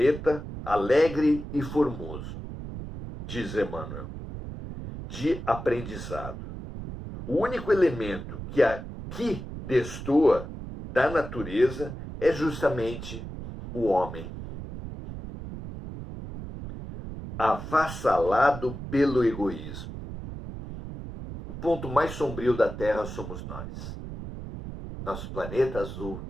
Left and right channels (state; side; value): noise; right; rumble, 9 dB below the sound